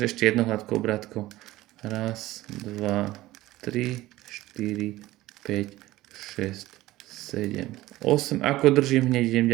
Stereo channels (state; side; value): quieter; left; 16.9 dB